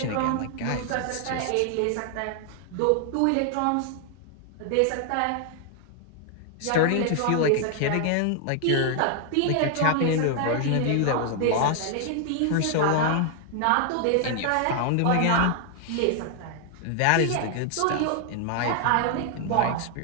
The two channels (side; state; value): both; different; correlation 0.00